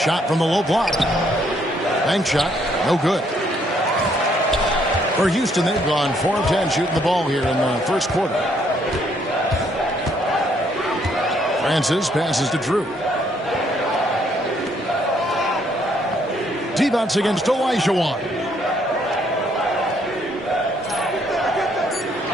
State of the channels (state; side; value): normal; both; correlation 0.69